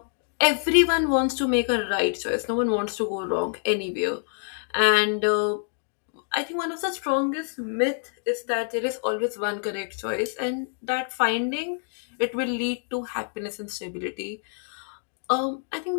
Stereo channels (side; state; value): right; silent; 57 dB below the other